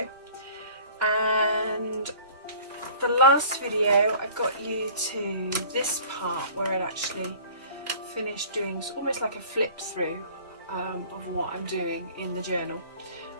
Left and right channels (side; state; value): both; inverted; correlation -0.47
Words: and the last video I got you to this part where I actually finished doing almost like a flip through of what I'm doing in the journal,